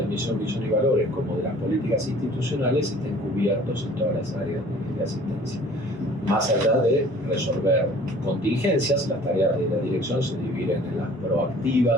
la misión, visión y valores como de las políticas institucionales estén cubiertos en todas las áreas de asistencia. Más allá de resolver contingencias, las tareas de la dirección se dividen en las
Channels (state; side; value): normal; both; correlation 0.51